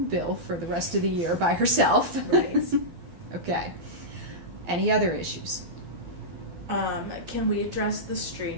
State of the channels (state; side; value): late; left; 12 ms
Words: bill for the rest of the year by herself. Right. Okay. Any other issues? Can we address the